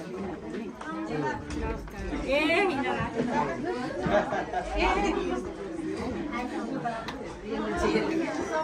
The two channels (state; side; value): identical; both; correlation 1.00